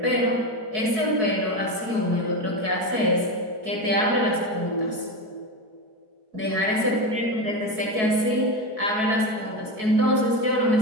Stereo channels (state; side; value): late; left; 4.6 ms